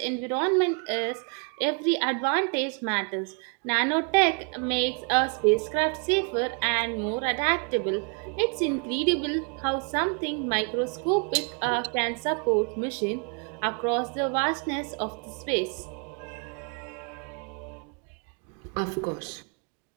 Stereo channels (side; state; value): left; quieter; 37.0 dB